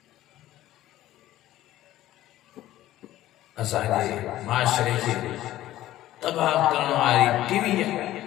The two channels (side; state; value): right; quieter; 14.4 dB